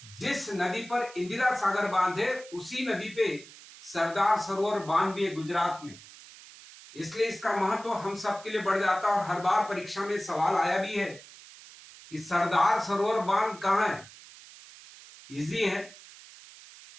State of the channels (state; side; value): noise; right; hiss, 19 dB below the sound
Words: जिस नदी पर इंदिरा सागर बांध है उसी नदी पे सरदार सरोवर बांध भी है गुजरात में। इसलिए इसका महत्व हम सबके लिए बढ़ जाता है और हर बार परीक्षा में सवाल आया भी है कि सरदार सरोवर बांध कहां है। इजी है,